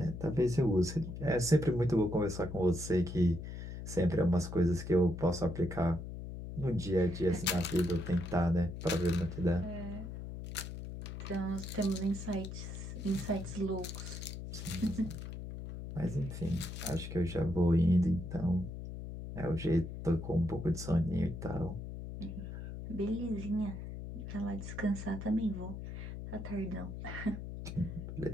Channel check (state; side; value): noise; left; hum, 8 dB below the sound